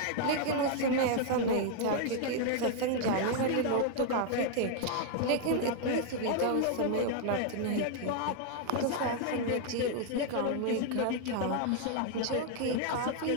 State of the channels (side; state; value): both; different; correlation 0.00